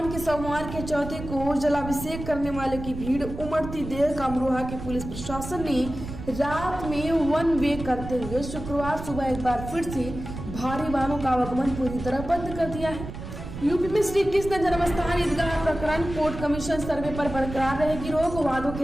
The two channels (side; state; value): right; noise; rumble, 9 dB below the sound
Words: के सोमवार के चौथे को जलाभिषेक करने वाले की भीड़ उमड़ती देख अमरोहा के पुलिस प्रशासन ने रात में 1 वे करते हुए शुक्रवार सुबह एक बार फिर से भारी वाहनों का आवागमन पूरी तरह बंद कर दिया है। यूपी में श्री कृष्ण जन्मस्थान ईदगाह प्रकरण कोर्ट कमीशन सर्वे पर बरकरार रहेगी रोक, वादों